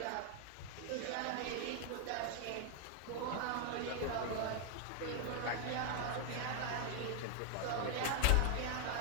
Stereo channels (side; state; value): both; different; correlation 0.00